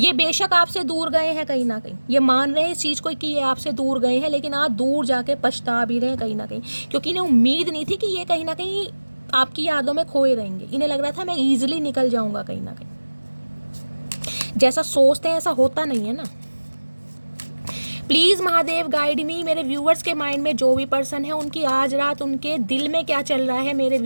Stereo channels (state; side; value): inverted; both; correlation -1.00